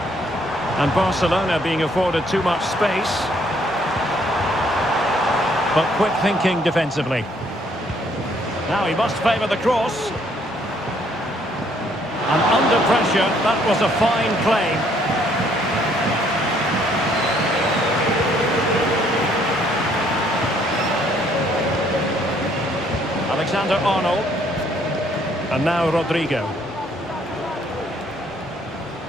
And Barcelona being afforded too much space. But quick thinking defensively. Now he must favour the cross. And under pressure, that was a fine claim. Alexander-Arnold. And now Rodrigo.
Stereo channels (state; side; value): normal; both; correlation 0.66